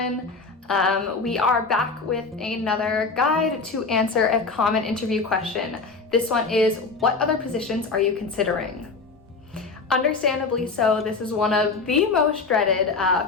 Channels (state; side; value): quieter; right; 4.2 dB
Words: We are back with another guide to answer a common interview question. This one is, what other positions are you considering? Understandably so, this is one of the most dreaded